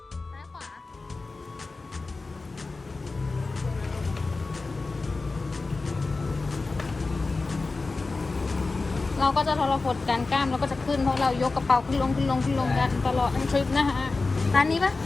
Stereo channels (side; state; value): right; quieter; 3.7 dB